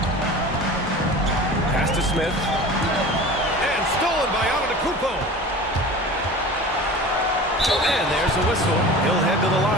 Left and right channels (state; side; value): normal; both; correlation 0.37